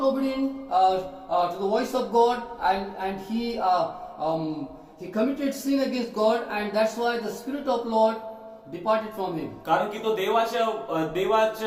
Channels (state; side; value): identical; both; correlation 1.00